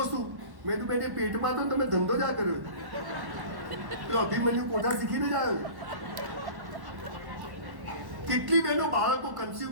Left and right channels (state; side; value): late; left; 1.1 ms